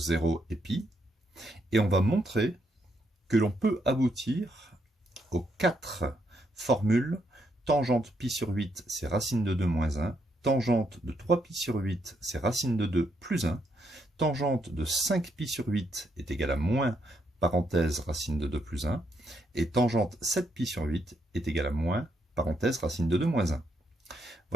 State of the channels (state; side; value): normal; both; correlation 0.77